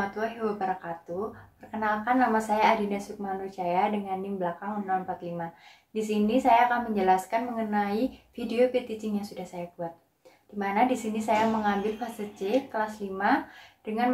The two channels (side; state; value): both; identical; correlation 1.00